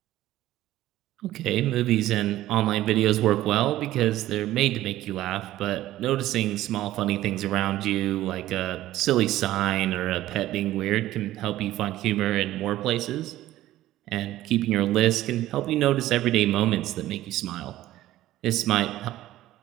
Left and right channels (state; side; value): quieter; left; 14.7 dB